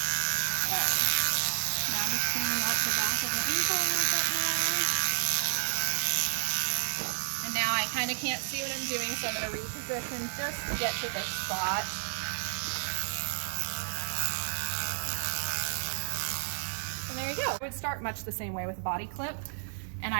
Alright. Now I'm just cleaning up the back of the ankle a little bit more. And now I kind of can't see what I'm doing, so I'm going to reposition just to get to this spot. And there you go. I would start much the same way with a body clip, and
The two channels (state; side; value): silent; left; digital silence